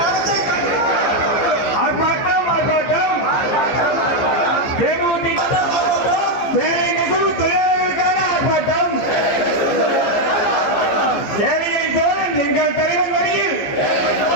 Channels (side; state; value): right; late; 15 ms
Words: ஆர்ப்பாட்டம் ஆர்ப்பாட்டம் தேமுதிக வேலை நெசவு தொழிலாளர்களுக்கான ஆர்ப்பாட்டம் ஏழைகளின் தோழன் எங்கள் தலைவன் வழியில்